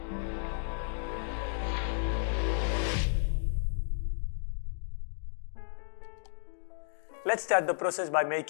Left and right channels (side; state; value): right; silent; digital silence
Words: Let's start the process by